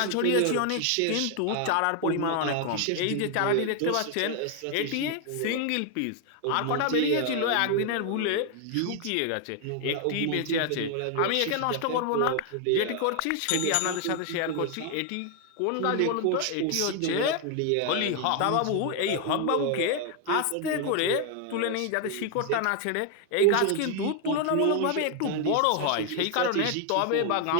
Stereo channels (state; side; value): different; both; correlation 0.00